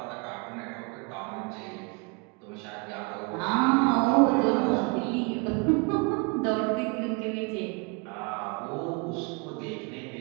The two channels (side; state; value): left; quieter; 31.8 dB